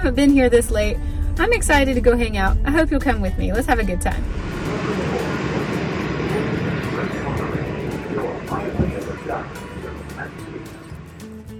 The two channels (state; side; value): identical; both; correlation 1.00